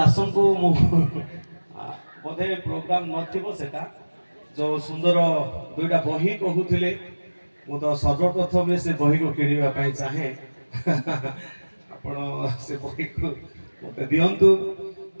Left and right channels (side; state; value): both; inverted; correlation -1.00